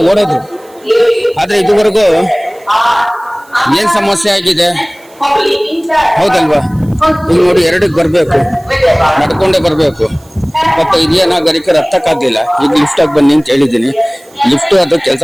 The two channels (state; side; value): noise; right; hiss, 28 dB below the sound